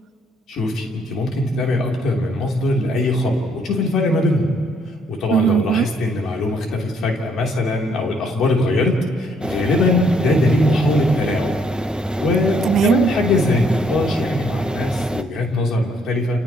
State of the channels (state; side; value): normal; both; correlation 0.68